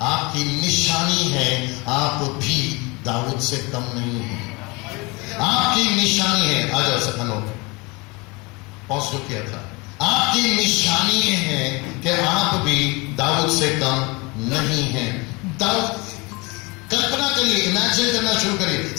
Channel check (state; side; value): quieter; right; 26.2 dB